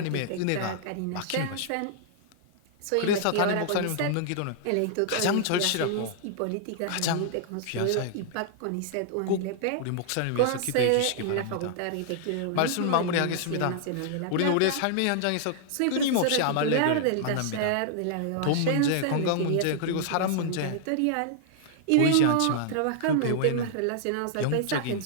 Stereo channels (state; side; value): different; both; correlation -0.01